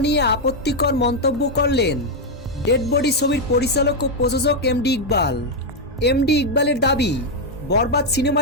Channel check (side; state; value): both; normal; correlation 0.01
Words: নিয়ে আপত্তিকর মন্তব্য করলেন ডেড বডি ছবির পরিচালক ও প্রযোজক এমডি ইকবাল। এমডি ইকবালের দাবি, বরবাদ